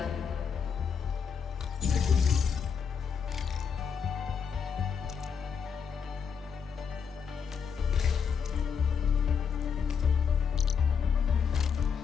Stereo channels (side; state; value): right; quieter; 6.6 dB